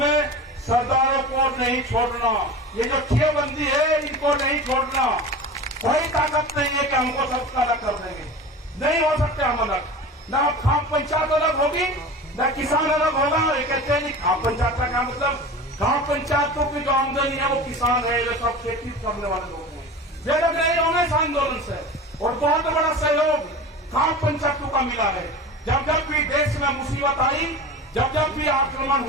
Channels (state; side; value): normal; both; correlation 0.33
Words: में सरदारों को नहीं छोड़ना। ये जो ठियाबंदी है, इनको नहीं छोड़ना। कोई ताकत नहीं है कि हमको सबका अलग कर देंगे, नहीं हो सकते हम अलग। न खाप पंचायत अलग होगी, न किसान अलग होगा। ये कहते हैं खाप पंचायत का क्या मतलब? खाप पंचायतों की जो आमदनी है वो किसान है, वे सब खेती करने वाले लोग हैं। वे लोग नहीं होंगे इस आंदोलन से। और बहुत बड़ा सहयोग खाप पंचायतों का मिला है। जब जब भी देश में मुसीबत आई, जब जब भी आक्रमण